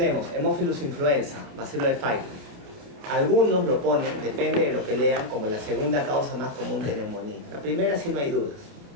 Haemophilus influenza, bacilo de Pfeiffer. Algunos lo ponen, depende de lo que lean, como la segunda causa más común de neumonía. La primera sí no hay dudas.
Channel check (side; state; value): left; late; 29 ms